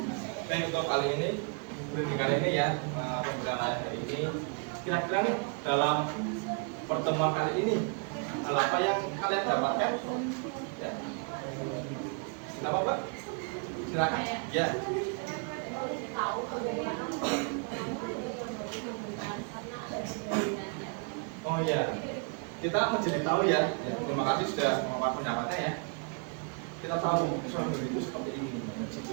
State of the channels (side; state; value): left; quieter; 37.8 dB